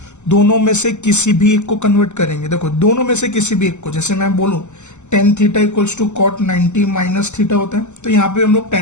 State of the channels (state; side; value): late; right; 0.83 ms